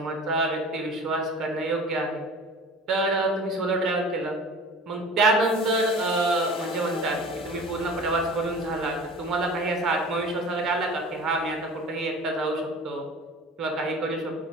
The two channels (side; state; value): both; normal; correlation 0.40